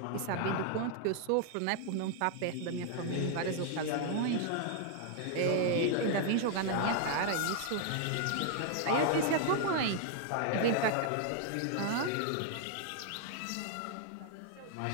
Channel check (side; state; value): both; different; correlation 0.00